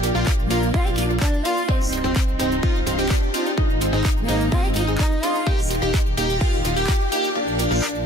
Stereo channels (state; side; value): normal; both; correlation 0.64